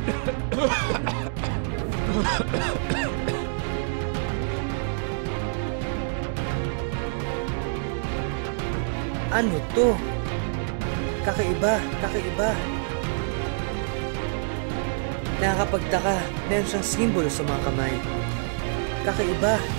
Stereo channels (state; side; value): silent; left; digital silence